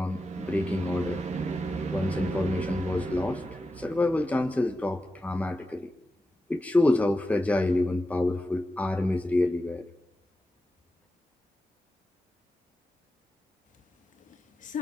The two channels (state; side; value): normal; both; correlation 0.91